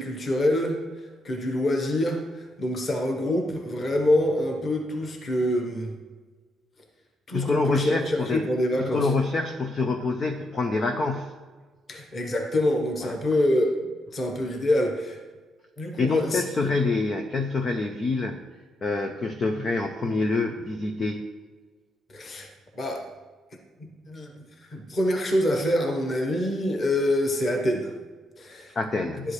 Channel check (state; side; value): normal; both; correlation 0.81